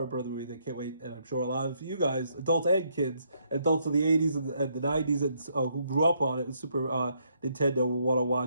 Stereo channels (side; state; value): both; inverted; correlation -0.73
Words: Bros. Movie. They can't wait. And I'm sure a lot of you guys, adults and kids, adults of the 80s and the 90s and who grew up on it with Super Nintendo will want to